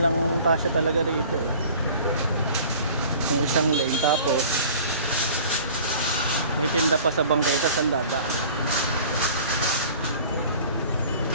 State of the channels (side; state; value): both; inverted; correlation -0.46